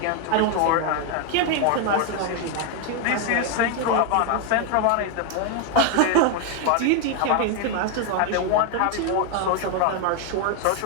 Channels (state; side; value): different; both; correlation 0.01